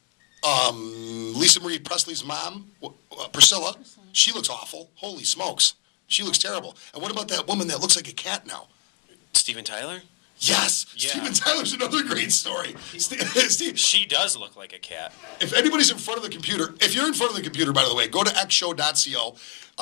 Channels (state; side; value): quieter; right; 36.4 dB